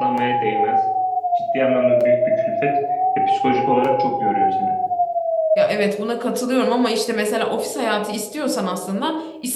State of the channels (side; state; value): both; identical; correlation 1.00